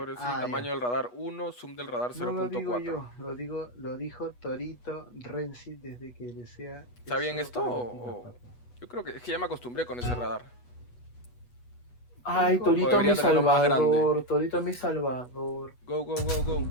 sí, ya. tamaño del radar 1, zoom del radar No lo digo 0.4. yo, lo dijo Torito Renzi desde que desea. ¿Está bien eso esto para o- Latino, Yo creo que es que ya me acostumbré con ese radar. Ay, O Torito debería mi tenerlo más salvador, Torito mi salvador. Go.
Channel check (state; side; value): late; right; 8.2 ms